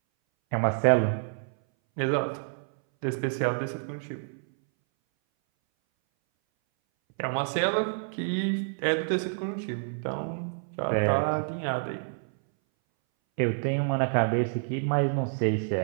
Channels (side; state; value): left; silent; 59 dB below the other